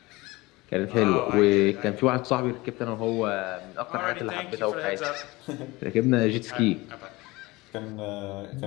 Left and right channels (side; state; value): right; quieter; 21.7 dB